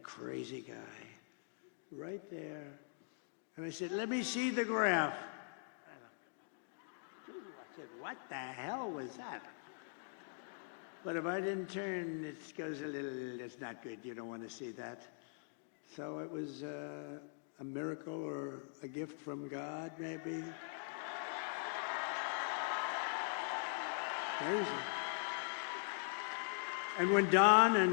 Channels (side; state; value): right; silent; digital silence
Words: crazy guy, right there. And I said, let me see the graph. I said, what the hell was that? But if I didn't turn, it goes a little, it's not good. You don't want to see that. So it was a miracle or a gift from God, maybe. Amazing. And when Don